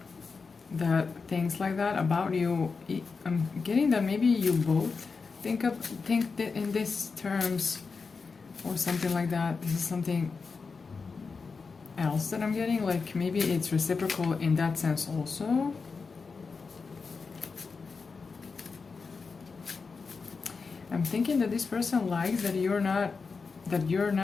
that thinks like that about you. I'm getting that maybe you both think that in these terms or something like that. This is something else that I'm getting, like maybe it's reciprocal in that sense also. I'm thinking that this person likes that you're not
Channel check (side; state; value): right; quieter; 4.8 dB